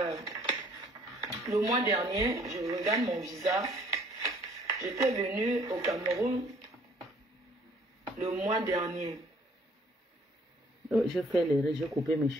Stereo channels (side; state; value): both; normal; correlation 0.59